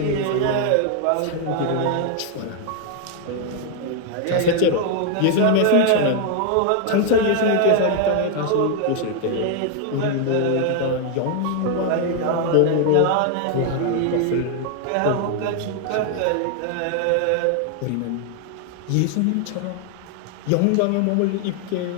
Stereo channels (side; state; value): both; different; correlation 0.00